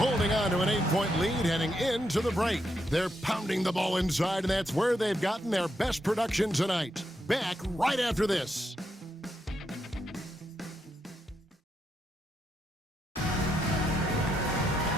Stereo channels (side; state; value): both; normal; correlation 0.81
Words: on to an 8-point lead heading into the break. They're pounding the ball inside, and that's where they've gotten their best production tonight. Back right after this.